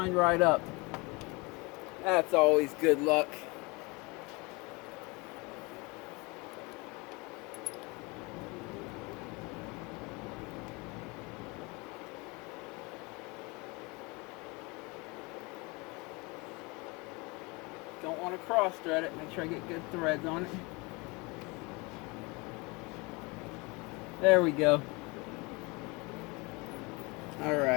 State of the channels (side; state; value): right; quieter; 26.7 dB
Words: right up. That's always good luck. Don't want to cross thread it. Make sure I get good threads on it. There we go.